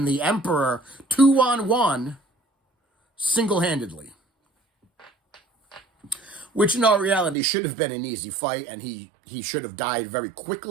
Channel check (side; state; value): left; drops out; at 7.4 s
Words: the Emperor 2-on-1 single-handedly. which in all reality should have been an easy fight, and he should have died very